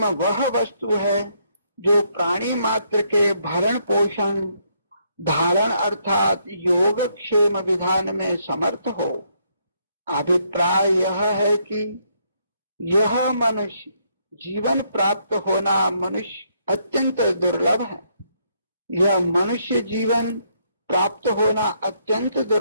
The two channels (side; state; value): both; inverted; correlation -0.73